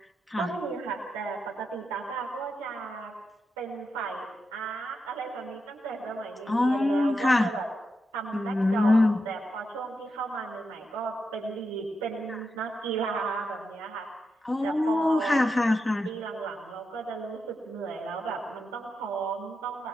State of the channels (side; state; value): both; normal; correlation 0.86